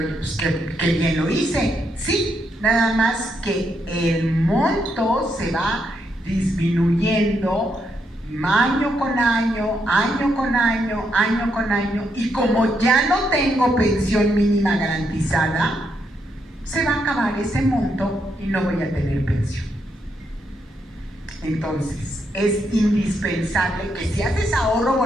pues qué bien lo hice. Sí, nada más que el monto se va disminuyendo año con año, año con año, año con año, y como ya no tengo pensión mínima garantizada, se va a acabar ese monto y no voy a tener pensión. Entonces, es indispensable que si haces ahorro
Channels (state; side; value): normal; both; correlation 0.79